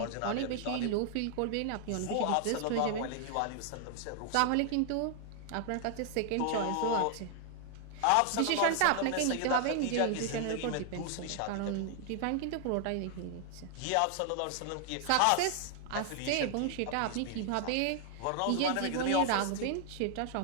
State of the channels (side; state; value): both; different; correlation 0.00